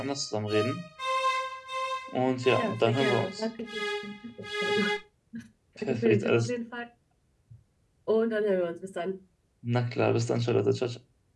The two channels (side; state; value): both; identical; correlation 1.00